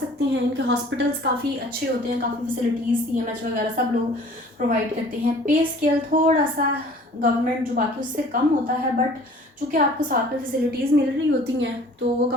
हैं। इनके हॉस्पिटल्स काफ़ी अच्छे होते हैं, काफ़ी फैसिलिटीज़ CMH वगैरह सब लोग प्रोवाइड करते हैं। पे स्केल थोड़ा सा गवर्नमेंट जो बाकी उससे कम होता है, बट चूँकि आपको साथ में फैसिलिटीज़ मिल रही होती हैं तो वो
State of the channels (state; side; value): normal; both; correlation 0.50